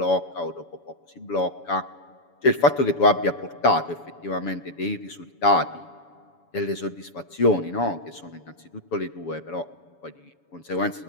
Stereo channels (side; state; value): right; late; 7.0 ms